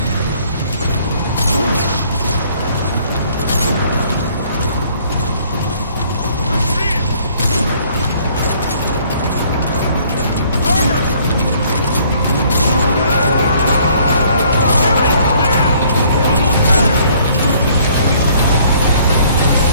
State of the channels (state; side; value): inverted; both; correlation -0.60